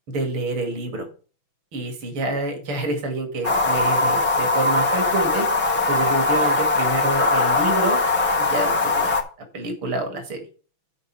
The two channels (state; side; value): late; left; 6.1 ms